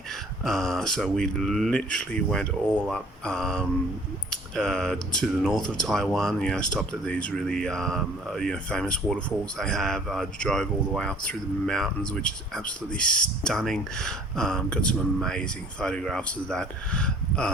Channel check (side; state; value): both; normal; correlation 0.53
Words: So we literally went all up to the north of Taiwan, stopped at these really famous waterfalls they have, drove all the way up through the mountains, which is absolutely stunning. Got some amazing photographs of that.